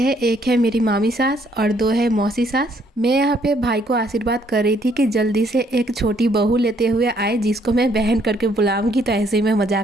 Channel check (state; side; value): normal; both; correlation 0.67